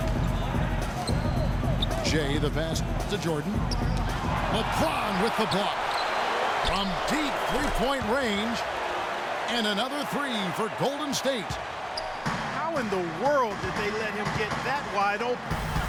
Jay, the pass to Jordan. LeBron with the block. From deep three-point range. And another 3 for Golden State. How in the world did they let him get that wide open?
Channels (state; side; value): identical; both; correlation 1.00